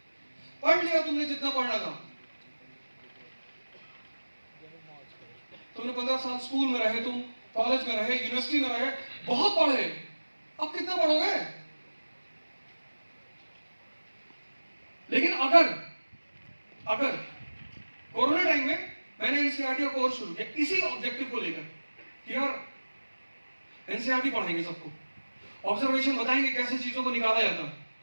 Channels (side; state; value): both; inverted; correlation -1.00